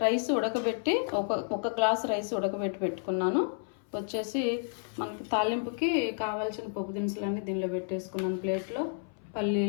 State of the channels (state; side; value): silent; right; 57 dB below the other